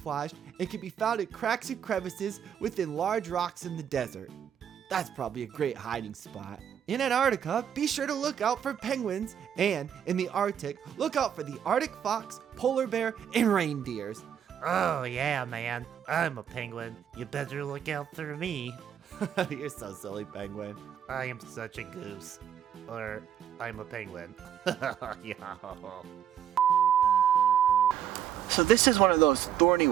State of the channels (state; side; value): quieter; left; 9.4 dB